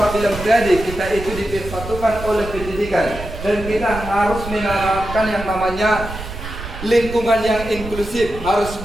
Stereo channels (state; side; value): noise; right; rumble, 10 dB below the sound